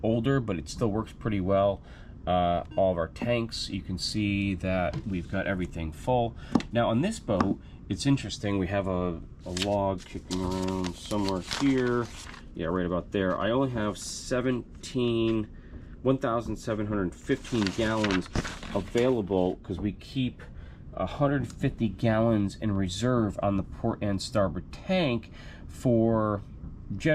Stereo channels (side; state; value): both; identical; correlation 1.00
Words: older, but it still works pretty well. All of our tanks, you can see that we've got everything full. Now on this boat, it's interesting, we have a log kicking around somewhere here. Yeah, right about there. I only have 1,715 gallons available because we keep 150 gallons in reserve on the port and starboard tank for